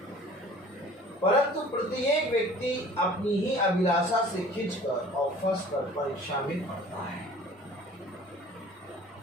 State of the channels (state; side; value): normal; both; correlation 0.48